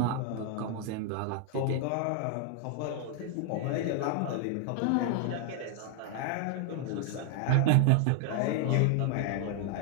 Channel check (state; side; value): different; both; correlation 0.00